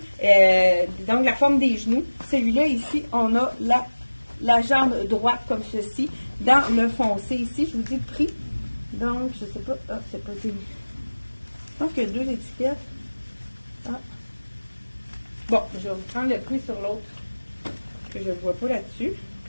donc la forme des genoux. Celui-là ici, on a la jambe droite comme ceci. Dans le foncé ici, je vous dis le prix. Donc, je ne sais pas. Ah, c'est pas des. Je pense qu'il y a deux étiquettes. Ah. Bon, je vais vous prendre le prix sur l'autre, que je ne vois pas là-dessus.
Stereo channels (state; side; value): inverted; both; correlation -1.00